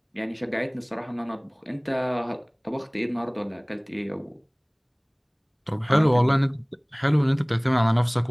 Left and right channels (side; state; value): both; identical; correlation 1.00